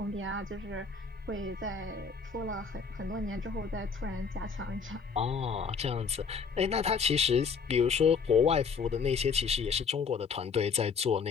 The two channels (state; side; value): quieter; right; 5.6 dB